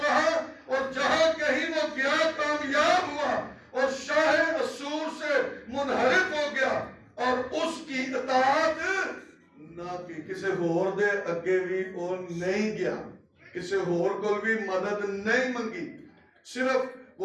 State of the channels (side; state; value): both; identical; correlation 1.00